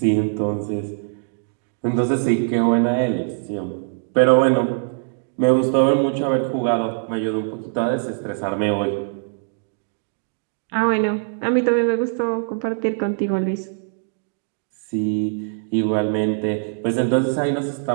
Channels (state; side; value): silent; left; digital silence